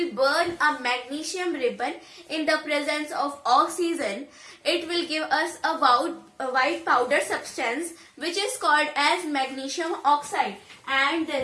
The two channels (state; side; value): identical; both; correlation 1.00